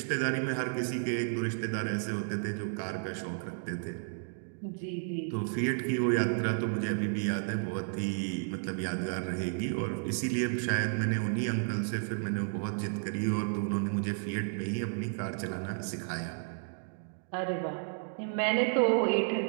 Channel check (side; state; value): left; silent; digital silence